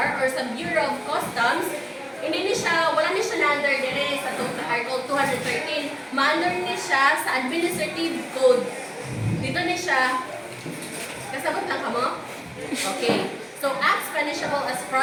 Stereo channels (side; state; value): both; identical; correlation 1.00